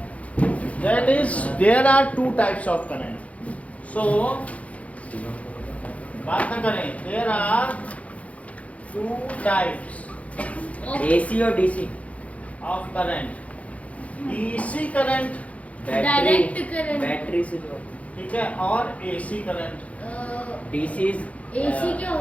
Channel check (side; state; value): right; late; 0.066 ms